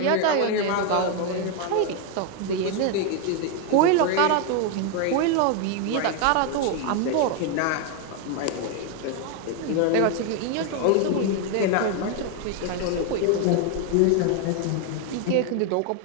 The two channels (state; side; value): different; both; correlation 0.01